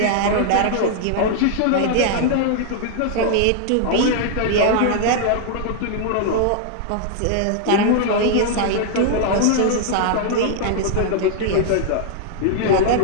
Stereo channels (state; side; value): different; both; correlation -0.01